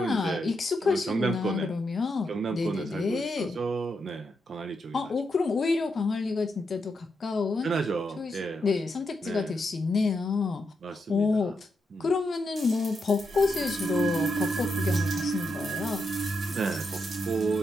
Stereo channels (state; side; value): normal; both; correlation 0.83